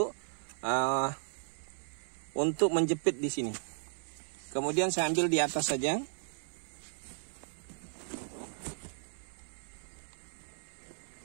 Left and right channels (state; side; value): silent; left; 54 dB below the other